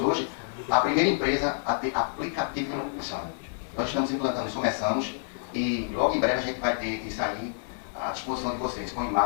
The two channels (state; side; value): silent; right; digital silence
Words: hoje a primeira empresa a ter aplicativo de manutenção. Nós estamos implantando isso, começamos, e logo em breve a gente vai ter isso ali à disposição de vocês, com